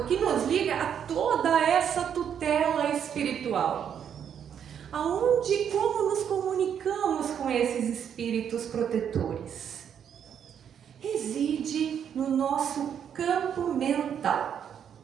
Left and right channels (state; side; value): quieter; left; 8.5 dB